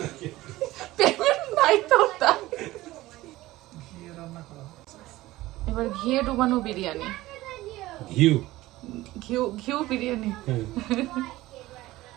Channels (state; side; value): quieter; left; 17.5 dB